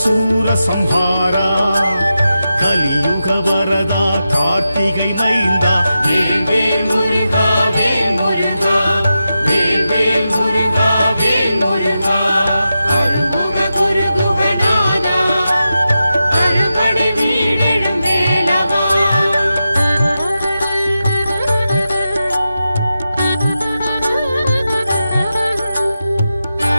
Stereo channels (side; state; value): both; inverted; correlation -0.90